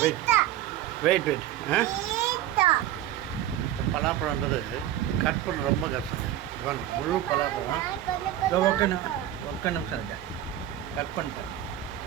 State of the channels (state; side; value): quieter; left; 12.4 dB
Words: வெயிட் பலாப்பழன்றது கட் பண்ண ரொம்ப கஷ்டம். முழு பலாப்பழம் ஒக்க நிமிஷம் இருக்கேன் கட் பண்ணிட்டேன்.